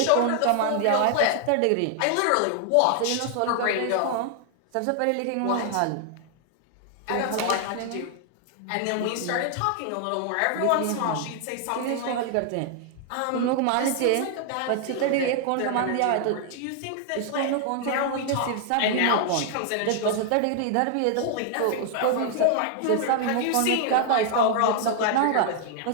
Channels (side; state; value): both; different; correlation 0.00